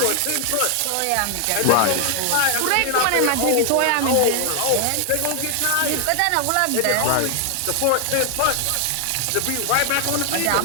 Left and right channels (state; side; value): different; both; correlation 0.00